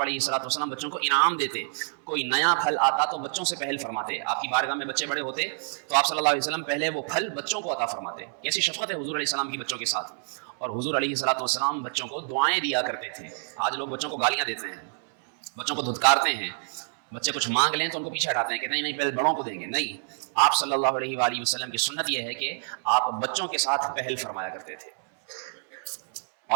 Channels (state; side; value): silent; left; 60 dB below the other